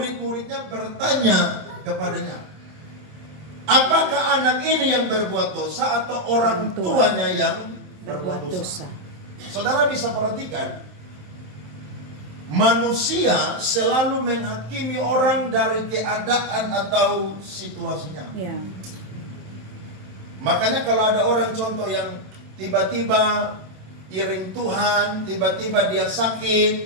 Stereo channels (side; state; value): left; late; 27 ms